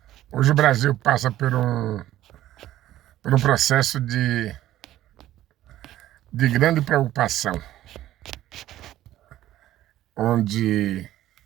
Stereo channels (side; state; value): left; quieter; 13.8 dB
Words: hoje o Brasil passa por um processo de grande preocupação, onde,